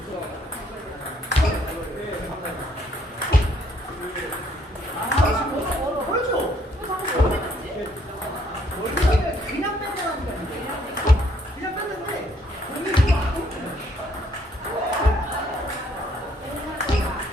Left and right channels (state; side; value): normal; both; correlation 0.67